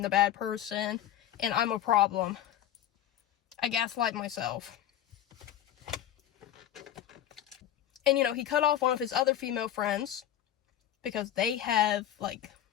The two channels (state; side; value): quieter; right; 11.3 dB